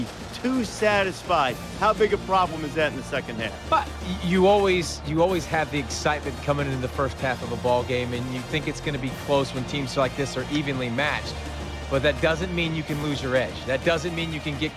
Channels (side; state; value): both; identical; correlation 1.00